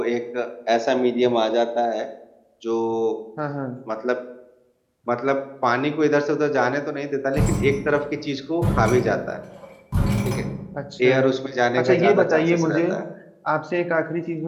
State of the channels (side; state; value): both; identical; correlation 1.00